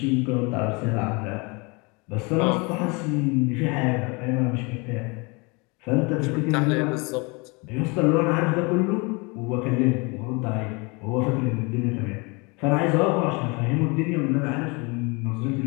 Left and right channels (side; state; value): right; quieter; 28.7 dB